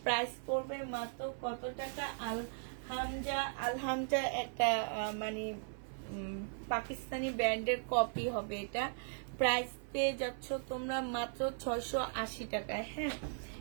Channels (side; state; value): left; silent; 53 dB below the other